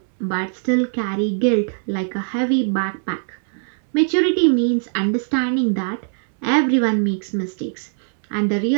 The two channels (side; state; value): left; silent; digital silence